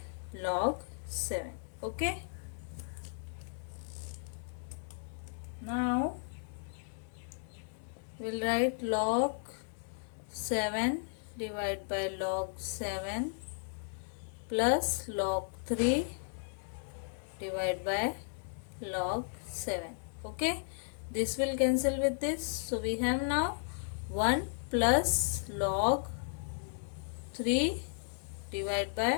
log 7. Okay, now we'll write log 7 divided by log 7 plus log 3 divided by log 7. Okay, this will cancel with this. So we have now 1 plus log 3 divided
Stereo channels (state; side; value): silent; right; digital silence